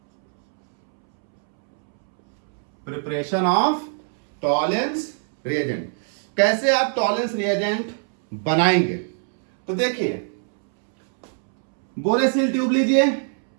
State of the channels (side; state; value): left; silent; 64 dB below the other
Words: preparation of tolerance reagent. कैसे आप टॉलरेंस रिएजेंट बनाएंगे, तो देखिए बोरेसिल ट्यूब लीजिए,